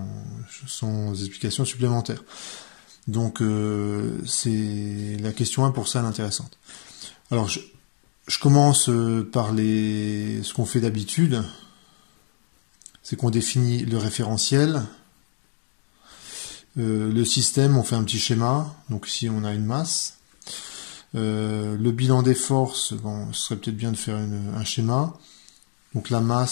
explication supplémentaire. Donc, c'est la question 1 pour ça l'intéressante. Alors, je commence par ce qu'on fait d'habitude. C'est qu'on définit le référentiel. Le système, on fait un petit schéma. Donc ici, on a une masse. Le bilan des forces, bon, ce serait peut-être bien de faire un schéma. Donc la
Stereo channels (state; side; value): silent; right; digital silence